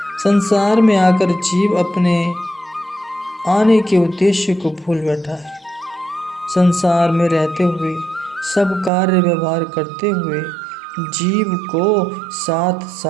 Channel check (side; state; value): left; drops out; at 8.9 s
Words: संसार में आकर जीव अपने आने के उद्देश्य को भूल बैठा है। संसार में रहते हुए सब कार्य व्यवहार करते हुए जीव को साथ